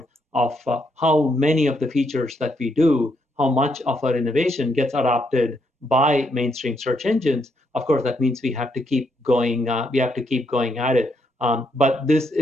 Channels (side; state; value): both; normal; correlation 0.77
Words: of how many of the features that we do, how much of our innovation gets adopted by mainstream search engines. Of course, that means we have to keep going. We have to keep going at it. But this